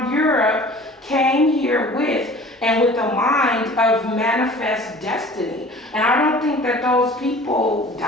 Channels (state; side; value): normal; both; correlation 0.45